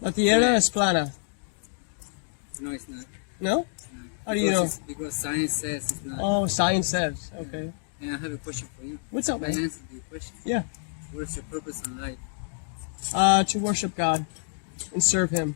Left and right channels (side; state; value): right; silent; digital silence